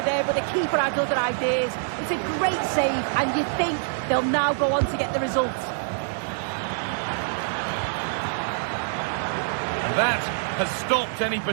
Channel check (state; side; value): silent; left; digital silence